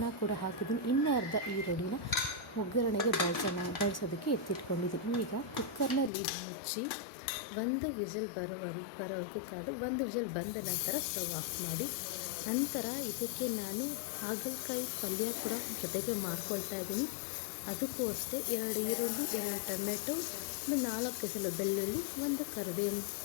ಕೂಡ ಹಾಕಿದ್ದೀನಿ. ಇನ್ನೂ ಅರ್ಧ ಈರುಳ್ಳಿನ ಒಗ್ಗರಣೆಗೆ ಬಳಸೋದಕ್ಕೆ ಎತ್ತಿಟ್ಕೊಂಡಿದ್ದೀನಿ. ಈಗ ಕುಕ್ಕರ್ನ ಲಿಡ್ ಮುಚ್ಚಿ 1 ವಿಸಿಲ್ ಬರೋವರೆಗೂ ಕಾದು 1 ವಿಸಿಲ್ ಬಂದ ನಂತರ ಸ್ಟವ್ ಆಫ್ ಮಾಡಿ. ನಂತರ ಇದಕ್ಕೆ ನಾನು ಹಾಗಲಕಾಯಿ ಪಲ್ಯ ಕೂಡ ಜೊತೆಗೆ ಮಾಡ್ಕೊಳ್ತಾ ಇದ್ದೀನಿ. ಅದಕ್ಕೂ ಅಷ್ಟೇ 2 ಈರುಳ್ಳಿ, 2 ಟೊಮೆಟೊ, 4 ಎಸಳು ಬೆಳ್ಳುಳ್ಳಿ, 1 ಕರಿಬೇವಿನ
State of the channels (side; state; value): right; drops out; at 6.1 s